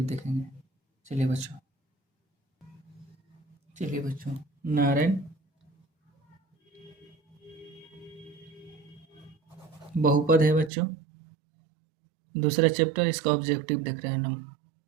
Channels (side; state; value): left; drops out; at 10.7 s